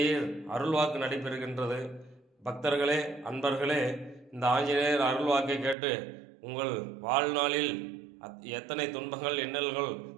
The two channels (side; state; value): left; drops out; at 5.8 s